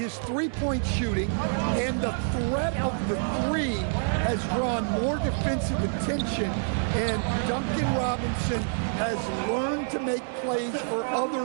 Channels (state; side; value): silent; left; digital silence